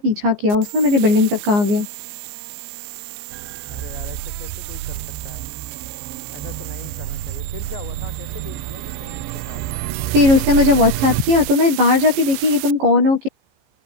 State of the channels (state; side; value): late; left; 15 ms